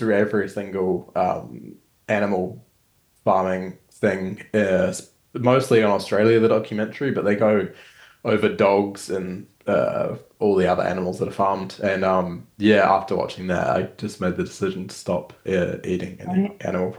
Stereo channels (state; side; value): identical; both; correlation 1.00